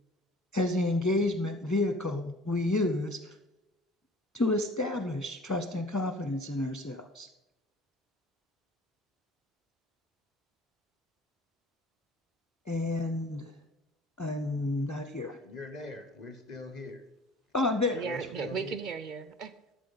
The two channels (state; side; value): normal; both; correlation 0.48